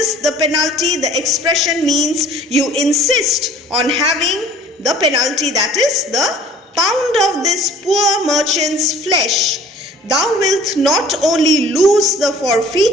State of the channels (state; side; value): normal; both; correlation 0.50